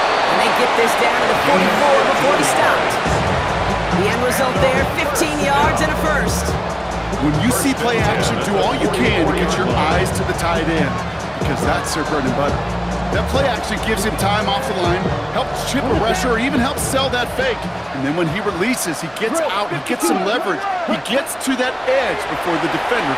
And they get this down to the 44 before he stopped. The end result there, 15 yards and a first. When you see play action, do all you can to get your eyes to the tight end, because that's their bread and butter. That play action gives him time off the line, helps chip a rusher, or even helps sell that fake. And then when he releases, he gets out, he gets some leverage. He gets to that edge before the defender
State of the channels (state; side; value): identical; both; correlation 1.00